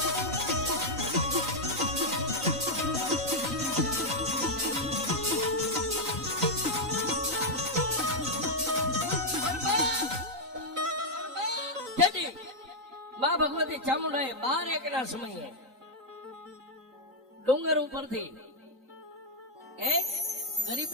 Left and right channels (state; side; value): late; left; 3.9 ms